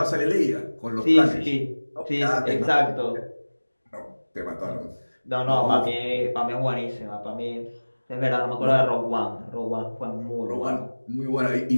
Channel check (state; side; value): inverted; both; correlation -1.00